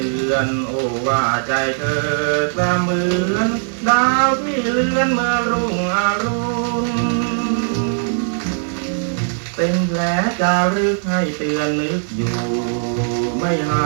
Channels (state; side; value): silent; left; digital silence